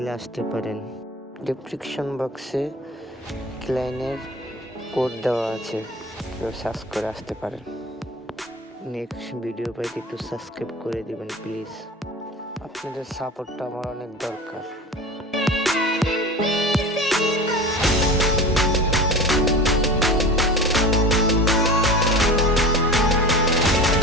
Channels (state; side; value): normal; both; correlation 0.34